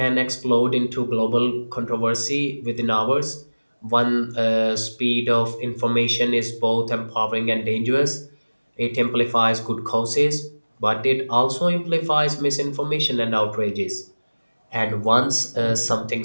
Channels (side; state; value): both; inverted; correlation -1.00